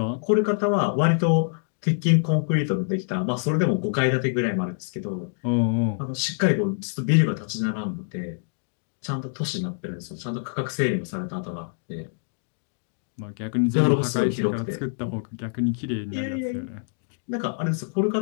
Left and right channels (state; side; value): silent; right; digital silence